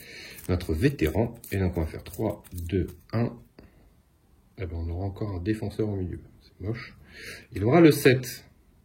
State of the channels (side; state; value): both; identical; correlation 1.00